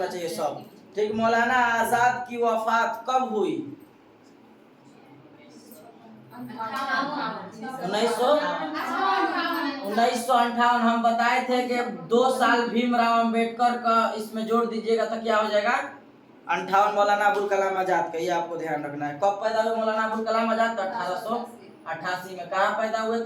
चाहिए सब। ठीक। मौलाना आजाद की वफात कब हुई? 1958। हम बताए थे कि 2 साल भीमराव अंबेडकर का इसमें जोड़ दीजिएगा तो क्या हो जाएगा? 58। मौलाना अबुल कलाम आजाद का। ये आपको ध्यान रखना है। कब पैदा हुए मौलाना अबुल कलाम आजाद? 1888 में। कहाँ पैदा हुए?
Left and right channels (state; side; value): identical; both; correlation 1.00